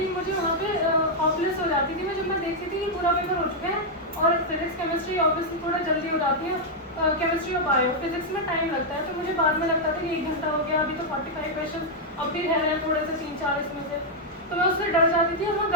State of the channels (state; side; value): normal; both; correlation -0.03